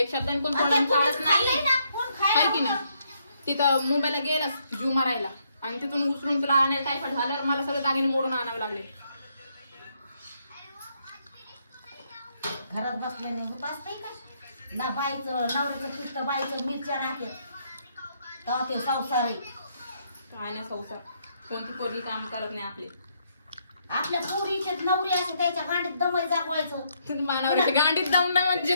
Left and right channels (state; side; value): inverted; both; correlation -0.73